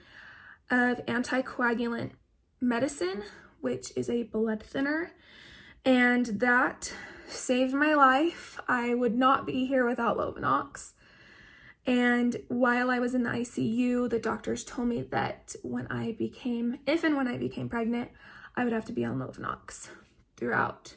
of anticoagulant medicine, which is a blood thinner, and that saved my life. I would not be here without Lovenox. And while I was in the ICU, the doctors told me that if and when I became pregnant, I would have to be on Lovenox throughout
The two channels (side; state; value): both; identical; correlation 1.00